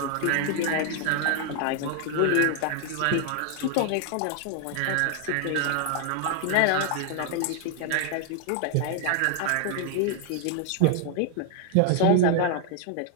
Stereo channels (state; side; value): different; both; correlation 0.00